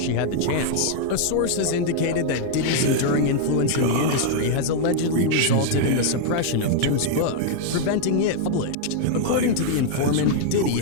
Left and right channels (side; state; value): both; different; correlation -0.01